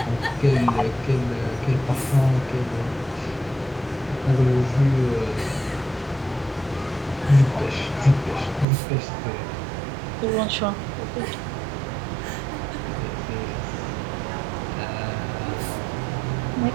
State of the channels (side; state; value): left; drops out; at 8.7 s